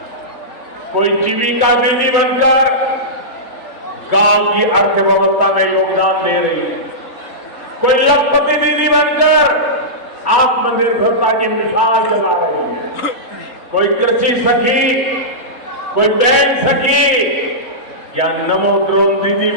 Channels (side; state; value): right; late; 4.2 ms